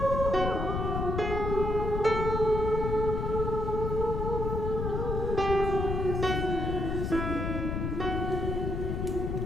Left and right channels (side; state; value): left; noise; rumble, 1 dB below the sound